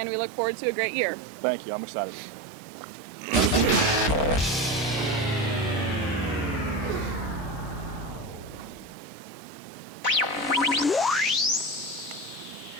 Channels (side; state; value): both; normal; correlation 0.22